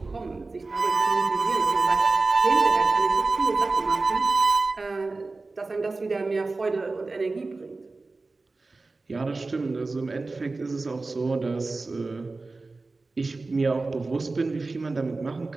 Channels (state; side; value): quieter; left; 3.6 dB